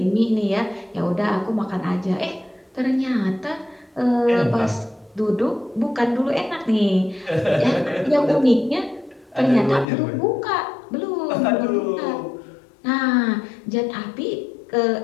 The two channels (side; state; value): right; drops out; at 9.9 s